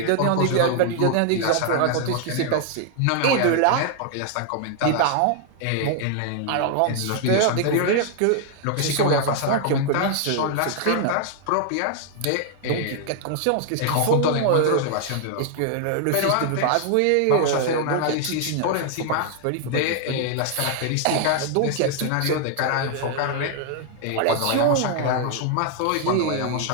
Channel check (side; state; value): both; different; correlation 0.00